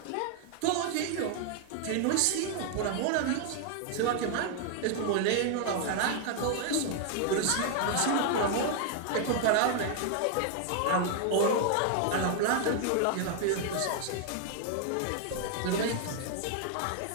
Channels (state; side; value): different; both; correlation 0.00